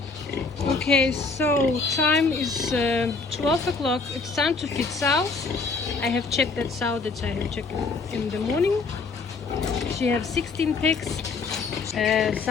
Okay, so time is 12 o'clock. It's time to feed sows. I have checked that sow that I have checked in the morning. She has 16 pigs.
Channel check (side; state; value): right; quieter; 4.2 dB